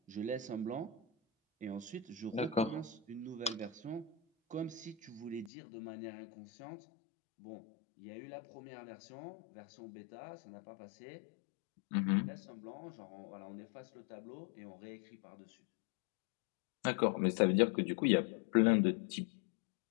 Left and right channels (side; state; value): right; drops out; at 5.5 s